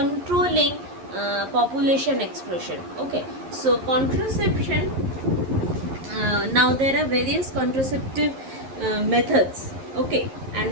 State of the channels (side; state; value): left; late; 11 ms